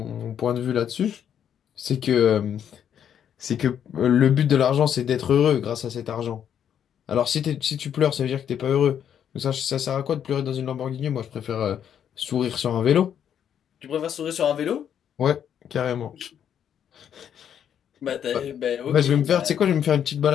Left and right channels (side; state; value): right; quieter; 9.0 dB